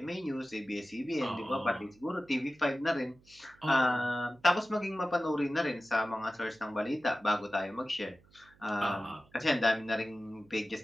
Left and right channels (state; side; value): noise; right; hum, 28 dB below the sound